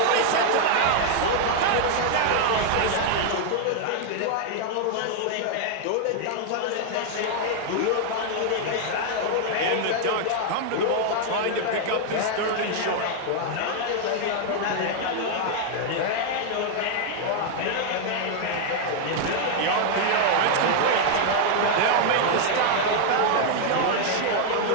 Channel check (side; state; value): both; different; correlation 0.00